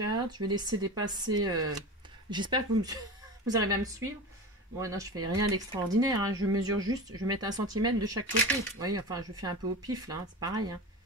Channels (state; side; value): normal; both; correlation 0.29